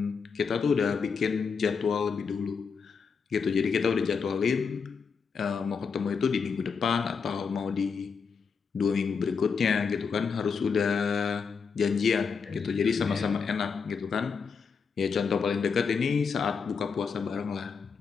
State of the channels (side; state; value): right; quieter; 5.7 dB